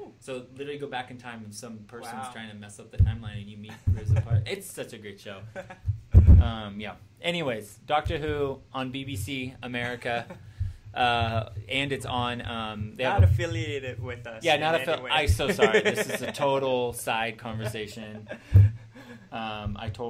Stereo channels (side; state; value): both; identical; correlation 1.00